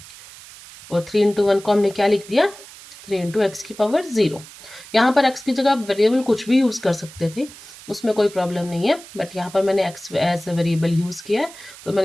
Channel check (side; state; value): right; noise; hiss, 18 dB below the sound